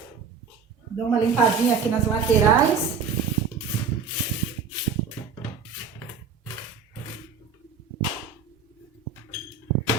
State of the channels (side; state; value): left; quieter; 5.9 dB